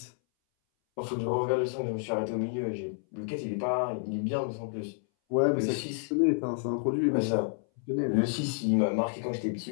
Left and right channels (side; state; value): right; silent; 58 dB below the other